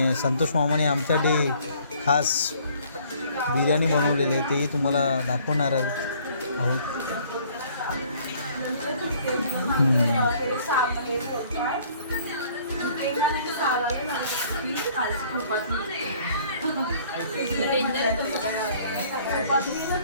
संतोष मामाने आमच्यासाठी खास बिर्याणी बनवलेली आहे, तेही तुम्हाला दाखवणार आहोत.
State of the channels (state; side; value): inverted; both; correlation -0.58